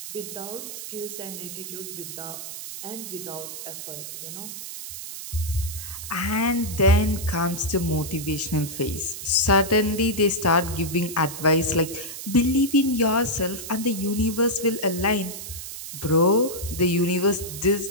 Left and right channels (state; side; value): noise; right; hiss, 9 dB below the sound